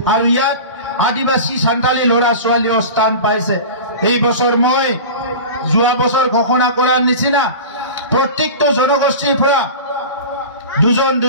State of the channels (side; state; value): both; inverted; correlation -0.33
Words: আৰু ইয়াত আদিবাসী সান্তালী ল'ৰা ছোৱালীও স্থান পাইছে এই বছৰ মই যোৱা বছৰ ঘোষণা কৰাৰ নিচিনা প্ৰত্যেকটো জনগোষ্ঠীৰ পৰা